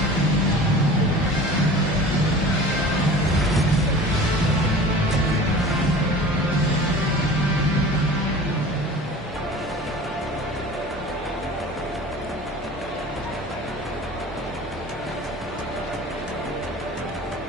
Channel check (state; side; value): normal; both; correlation 0.40